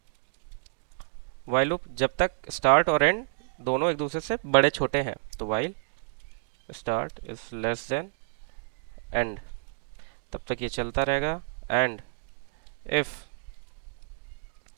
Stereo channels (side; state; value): left; silent; digital silence